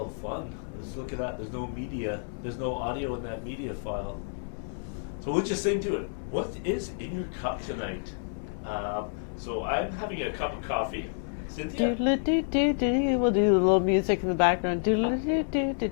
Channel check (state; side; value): silent; right; digital silence